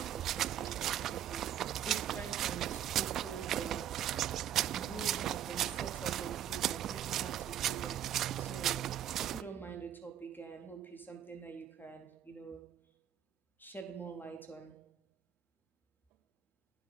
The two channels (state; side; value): quieter; left; 10.4 dB